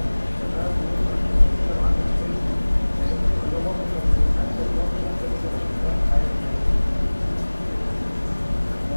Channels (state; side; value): inverted; both; correlation -1.00